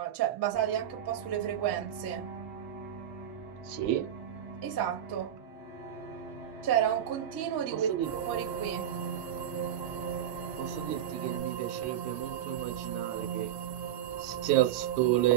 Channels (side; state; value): left; quieter; 10.6 dB